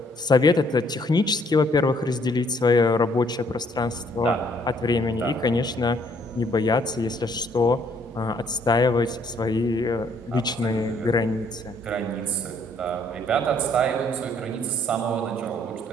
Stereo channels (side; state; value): both; normal; correlation 0.65